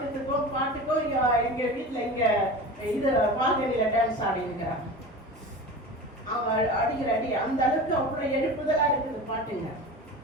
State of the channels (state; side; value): normal; both; correlation 0.32